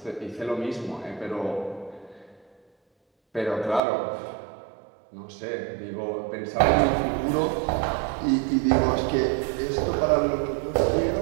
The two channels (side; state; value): left; drops out; at 3.8 s